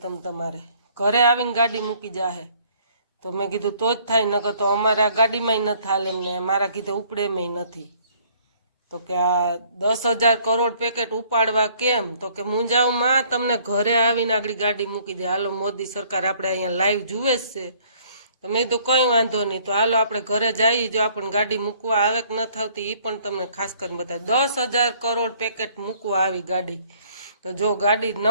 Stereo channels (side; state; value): both; inverted; correlation -0.60